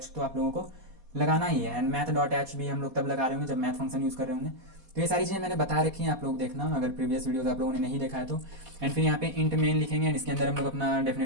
तो आप लोगों को लगाना ही है। एंड math.h भी हम लोग तब लगा रहे होंगे जब मैथ फंक्शन यूज़ कर रहे होंगे। तो ये सारी चीज़ें मैंने बता रखी हैं, आप लोग देखना अगर प्रीवियस वीडियोस आप लोगों ने नहीं देखा है तो। एंड फिर यहाँ पे इंट मेन लिखेंगे एंड इसके अंदर हम लोग अपना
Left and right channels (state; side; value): late; left; 4.0 ms